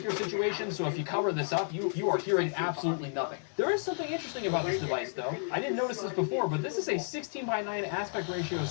situation, so if you cover this up, you are hearing absolutely nothing. There is something interesting about this device, though. I didn't notice this before, but this is a 16:9 aspect ratio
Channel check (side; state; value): right; silent; digital silence